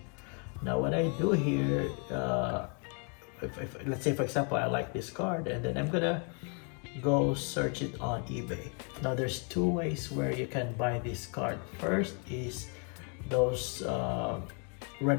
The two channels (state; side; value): quieter; right; 38.3 dB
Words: Now what I do here, if let's say for example I like this card, and then I'm gonna go search it on eBay. Now there's two ways where you can buy this card. First is those